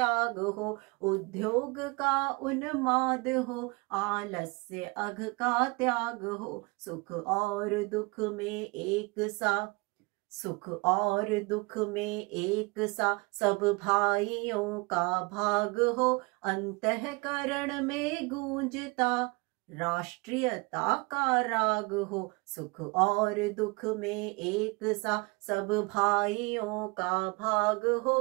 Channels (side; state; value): left; quieter; 27.5 dB